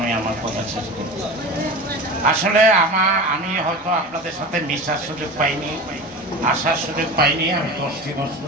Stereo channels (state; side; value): normal; both; correlation 0.31